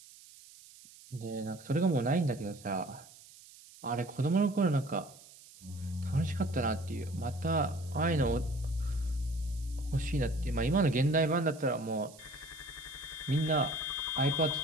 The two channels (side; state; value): right; noise; hiss, 21 dB below the sound